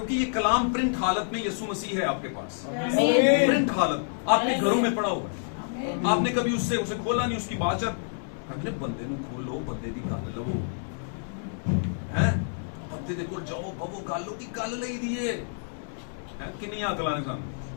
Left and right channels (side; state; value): right; silent; 59 dB below the other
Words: ये कलाम प्रिंट हालत में यीशु मसीह है आपके पास, प्रिंट हालत आपके घरों में पड़ा हुआ है। आपने कभी उसे खोला नहीं, उसकी बाचत अपने बंदे ਨੂੰ खोलो, बंदे दी गल लवो हैं, बंदे दे कोल जाओ, बवो गल की गल लई दिए हैं। किन्नी अकलां ने सानू